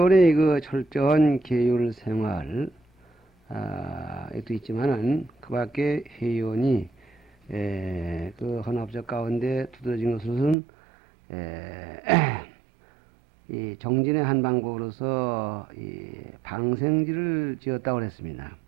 그 철저한 계율 생활 에도 있지만은 그 밖에 회원이 그 헌합적 가운데 두드러진 것은 이 정진의 한 방법으로서 이 방생지를 지었다고 했습니다.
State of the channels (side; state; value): left; drops out; at 10.6 s